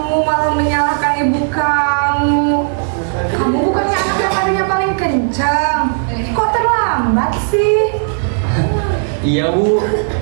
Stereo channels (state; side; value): silent; left; digital silence